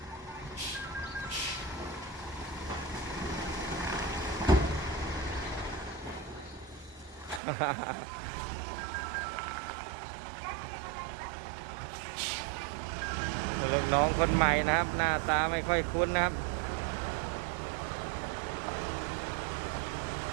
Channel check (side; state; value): left; drops out; at 7.4 s